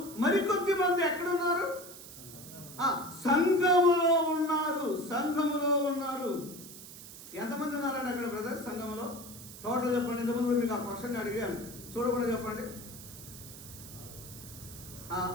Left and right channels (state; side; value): noise; right; hiss, 15 dB below the sound